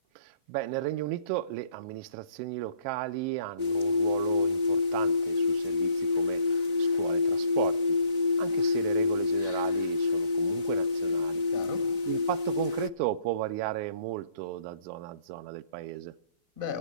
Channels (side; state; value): left; late; 4.0 ms